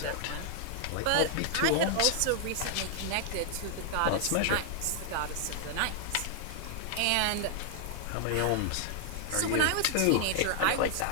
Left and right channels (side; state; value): both; different; correlation 0.00